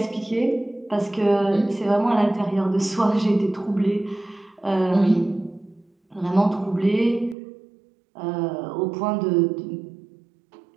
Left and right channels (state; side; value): drops out; left; at 7.4 s